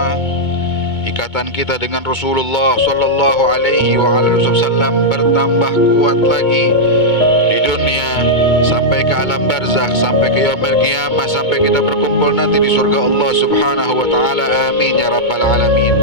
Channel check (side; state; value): right; late; 2.2 ms